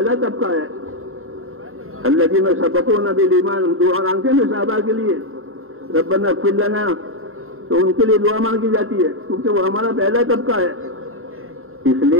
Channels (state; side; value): late; left; 0.61 ms